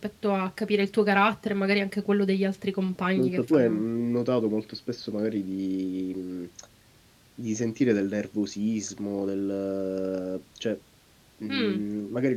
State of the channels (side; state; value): both; identical; correlation 1.00